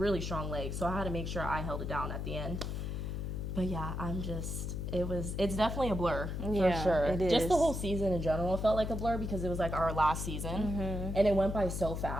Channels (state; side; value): noise; left; hum, 3 dB below the sound